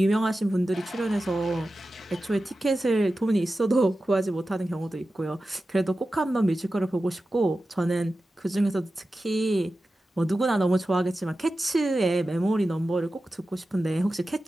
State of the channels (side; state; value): both; normal; correlation 0.93